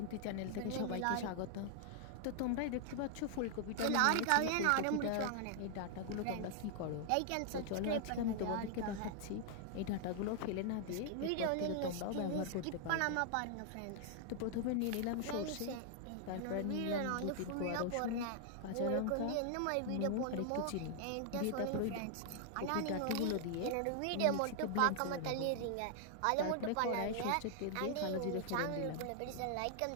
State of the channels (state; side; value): different; both; correlation 0.00